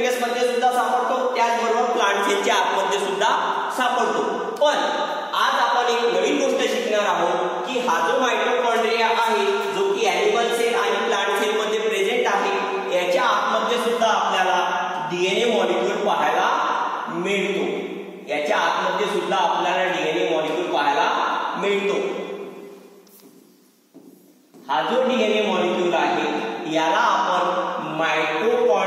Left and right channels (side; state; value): both; identical; correlation 1.00